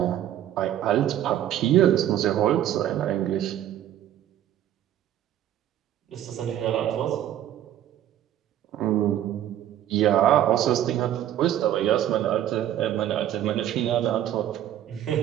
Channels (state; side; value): quieter; left; 11.6 dB